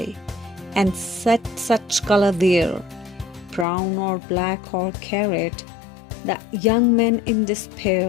and set such color there, brown or black or carrot, that young men in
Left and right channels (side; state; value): right; drops out; at 3.7 s